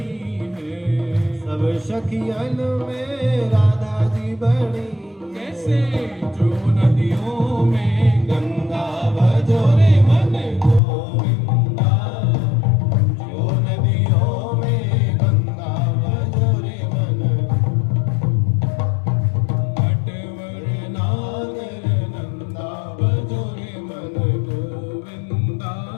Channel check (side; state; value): right; drops out; at 10.8 s